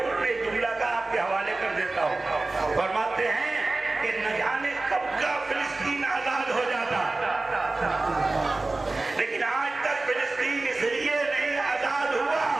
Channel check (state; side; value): quieter; left; 3.2 dB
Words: ایک جملہ کا آپ کے حوالے کر دیتا ہوں۔ فرماتے ہیں کہ نہ جانے کب کا فلسطین آزاد ہو جاتا، لیکن آج تک فلسطین اس لیے نہیں آزاد ہوا